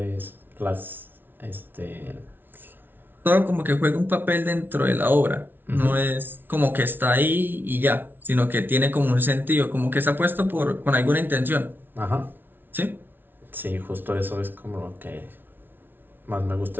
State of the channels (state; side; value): late; left; 0.098 ms